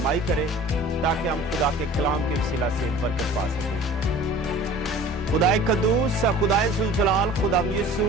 करे, ताकि हम खुदा के कलाम के वसीला से बरकत पा सकें। खुदाए कद्दूस, खुदाए जुलजलाल, खुदा यीशु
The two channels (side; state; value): both; normal; correlation 0.44